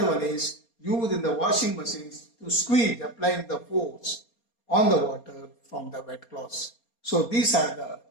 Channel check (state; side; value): late; right; 4.3 ms